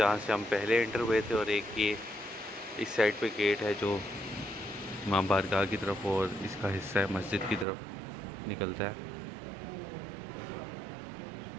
سے ہم پہلے انٹر ہوئے تھے, اور ایک یہ اس سائڈ پہ گیٹ ہے جو امام بارگاہ کی طرف اور اس کا حصہ ہے مسجد کی طرف نکلتا ہے.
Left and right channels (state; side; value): drops out; left; at 7.7 s